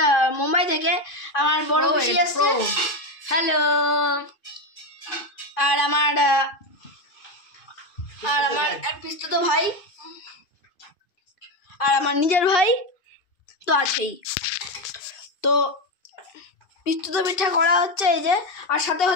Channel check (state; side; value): late; right; 2.5 ms